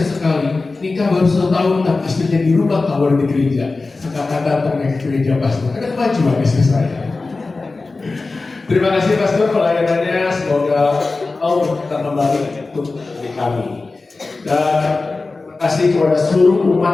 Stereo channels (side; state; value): right; quieter; 3.7 dB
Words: sekali, nikah baru 1 tahun, tapi istrinya di rumah, kawan di gereja. Sekarang datang ke gereja Pastor, ada kemajuan istri saya. Terima kasih Pastor pelayanannya, semoga Allah kita kembali untuk di kami. Dan terima kasih kepada seluruh